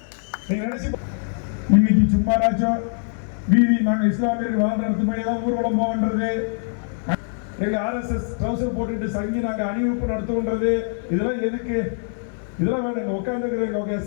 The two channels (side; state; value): right; silent; digital silence